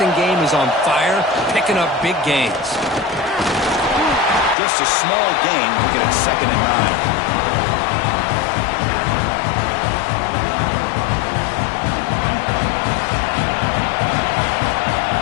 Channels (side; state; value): right; drops out; at 4.5 s